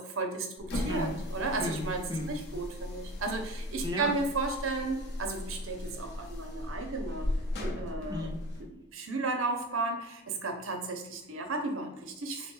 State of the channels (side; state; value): both; normal; correlation 0.32